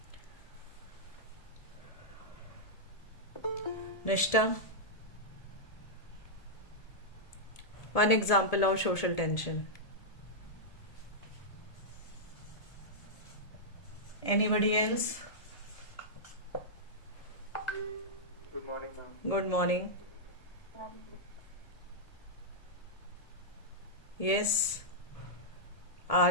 Nishta, one example of social tension. Anybody else? Good morning, ma'am. Good morning. Yes,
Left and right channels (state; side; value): late; right; 1.7 ms